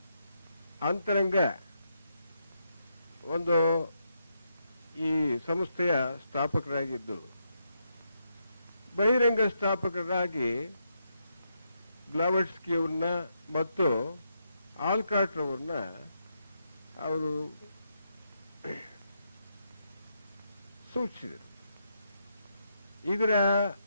ಅಂತರಂಗ ಒಂದು ಈ ಸಂಸ್ಥೆಯ ಸ್ಥಾಪಕರಾಗಿದ್ದು, ಬಹಿರಂಗ ಸ್ಥಾಪಕರಾಗಿ ಬ್ಲಾವಟ್ಸ್ಕಿ ಅವ್ರನ್ನ ಮತ್ತು ಆಲ್ಕಾಟ್ ಅವ್ರನ್ನ ಅವರು ಸೂಚಿಸಿದರು. ಇದರ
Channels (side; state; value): both; inverted; correlation -0.81